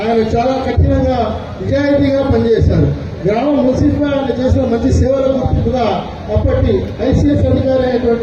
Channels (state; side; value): identical; both; correlation 1.00